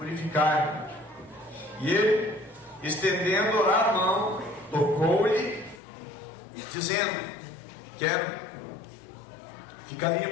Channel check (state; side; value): drops out; right; at 5.8 s